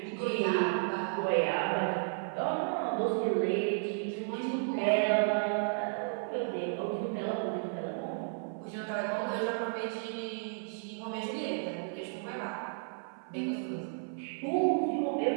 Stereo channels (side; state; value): left; silent; 56 dB below the other